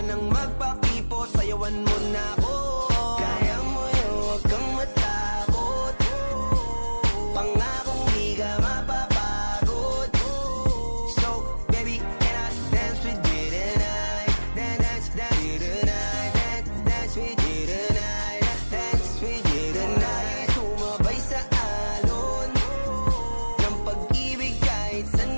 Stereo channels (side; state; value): both; inverted; correlation -1.00